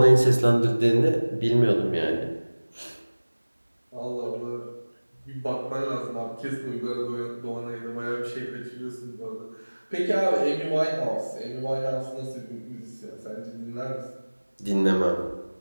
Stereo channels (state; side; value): inverted; both; correlation -1.00